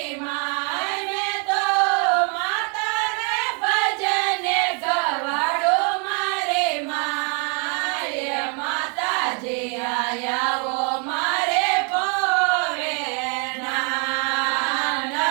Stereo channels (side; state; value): left; quieter; 37.5 dB